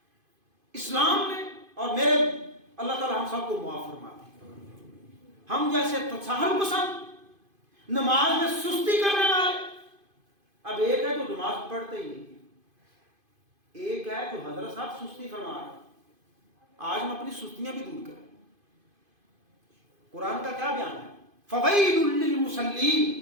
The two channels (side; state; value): left; late; 2.5 ms